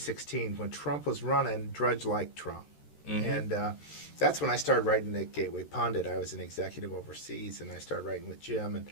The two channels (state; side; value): late; right; 13 ms